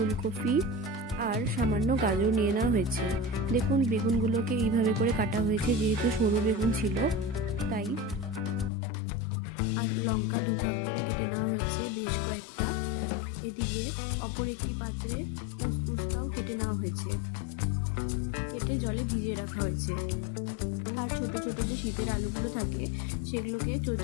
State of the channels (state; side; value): drops out; right; at 8.7 s